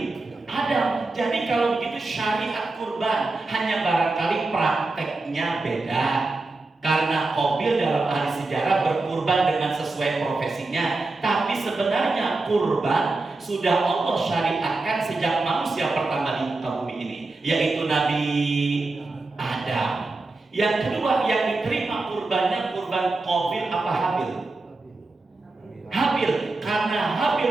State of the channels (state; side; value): quieter; left; 3.3 dB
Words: Adam. Jadi kalau begitu syariat kurban, hanya barangkali prakteknya beda. Karena Qabil dalam ahli sejarah berkurban dengan sesuai profesinya, tapi sebenarnya kurban sudah Allah syariatkan sejak manusia pertama di muka bumi ini, yaitu Nabi Adam. Yang kedua yang diterima kurbannya kurban Qabil apa Habil? Habil, karena